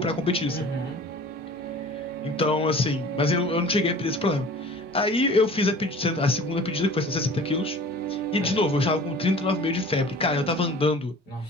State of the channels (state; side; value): normal; both; correlation 0.44